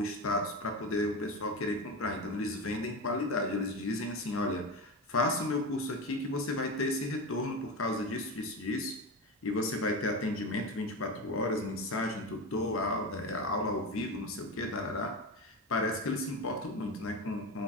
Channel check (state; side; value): normal; both; correlation 0.22